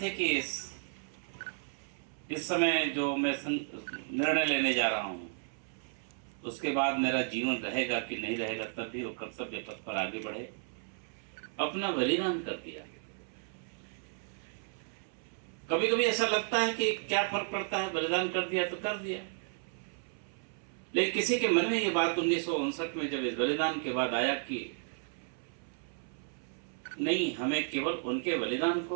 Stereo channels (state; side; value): silent; left; 55 dB below the other